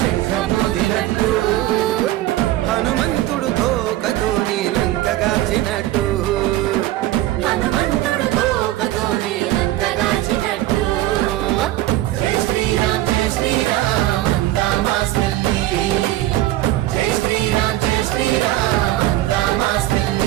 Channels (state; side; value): quieter; left; 15.4 dB